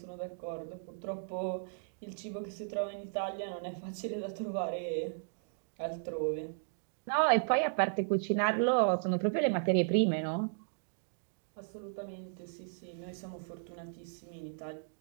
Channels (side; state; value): left; silent; digital silence